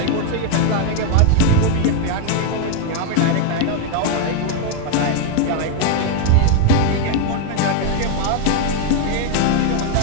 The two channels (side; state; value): both; different; correlation 0.01